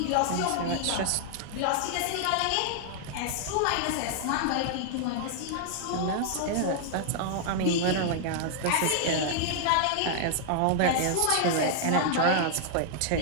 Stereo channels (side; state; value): both; different; correlation -0.01